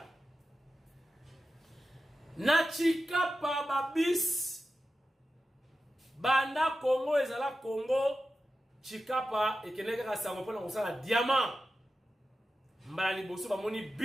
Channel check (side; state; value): both; normal; correlation 0.92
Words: na Chikapa babis banda Congo ezala Congo Chikapa ekeneka kasango pona kosala diamant mbala liboso bamoni